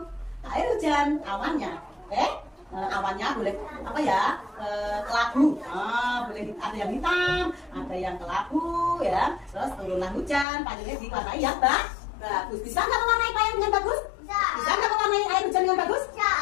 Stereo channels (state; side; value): drops out; right; at 10.5 s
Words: air hujan, awannya. Oke? Awannya boleh apa ya? Kelabu. Boleh ada yang hitam, ada yang kelabu ya. Terus turunlah hujan, payungnya diwarnai yang bagus. Bisa nggak mewarnai payung yang bagus? Bisa nggak mewarnai air hujan yang bagus?